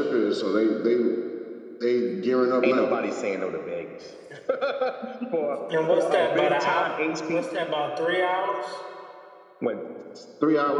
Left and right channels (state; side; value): identical; both; correlation 1.00